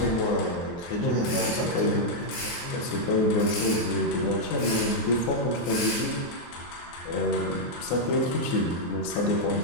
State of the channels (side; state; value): right; late; 23 ms